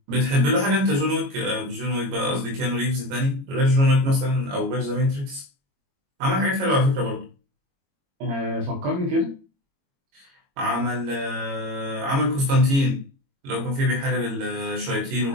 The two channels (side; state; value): left; late; 22 ms